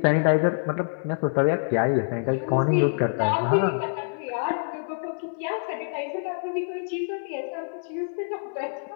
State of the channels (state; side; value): silent; right; 61 dB below the other